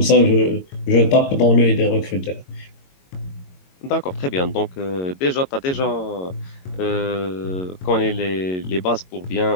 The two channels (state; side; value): late; right; 22 ms